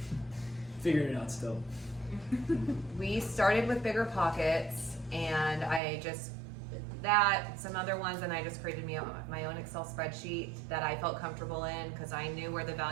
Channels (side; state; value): left; drops out; at 5.8 s